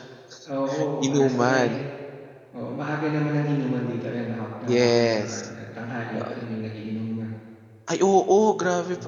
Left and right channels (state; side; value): identical; both; correlation 1.00